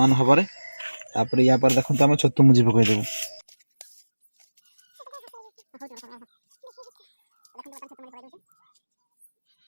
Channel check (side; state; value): both; inverted; correlation -1.00